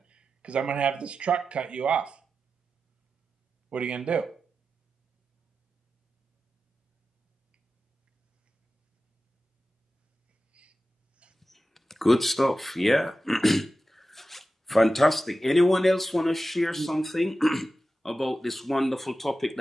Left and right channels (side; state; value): both; normal; correlation 0.93